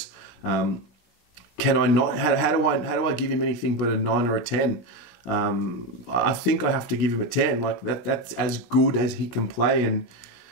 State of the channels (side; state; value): right; late; 17 ms